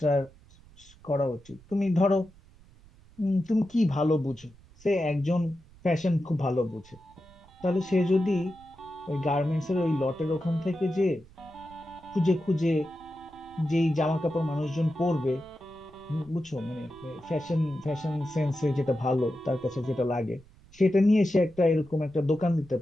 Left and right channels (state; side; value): noise; right; rumble, 25 dB below the sound